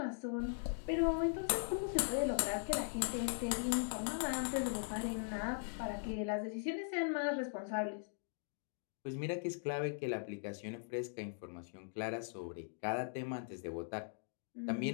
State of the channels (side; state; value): right; silent; digital silence